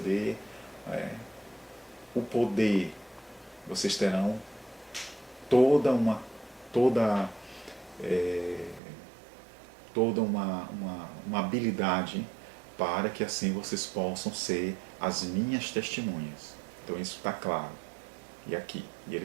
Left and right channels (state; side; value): drops out; left; at 8.8 s